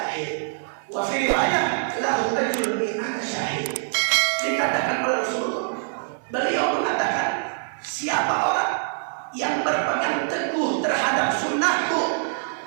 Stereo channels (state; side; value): silent; left; 58 dB below the other